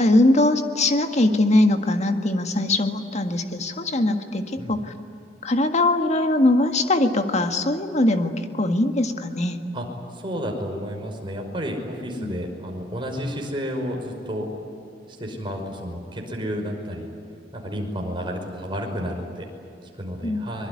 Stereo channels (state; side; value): normal; both; correlation 0.64